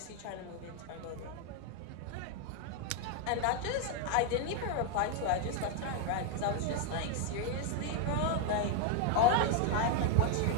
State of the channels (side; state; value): both; different; correlation 0.00